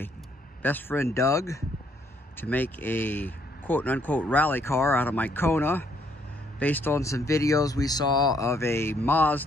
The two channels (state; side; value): normal; both; correlation 0.68